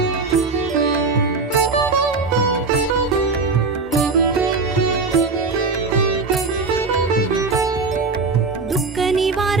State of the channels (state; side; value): quieter; left; 4.2 dB